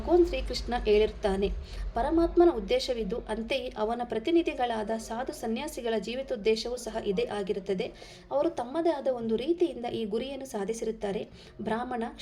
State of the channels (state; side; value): identical; both; correlation 1.00